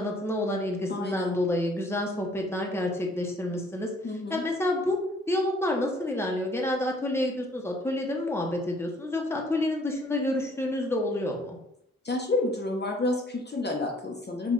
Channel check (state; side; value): normal; both; correlation 0.60